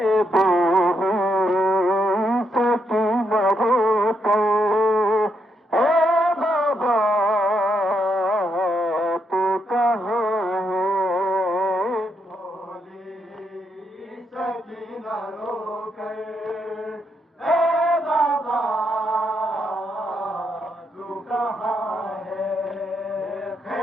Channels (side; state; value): both; normal; correlation 0.78